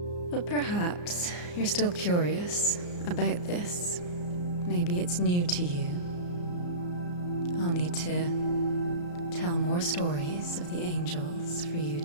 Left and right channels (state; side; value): late; right; 34 ms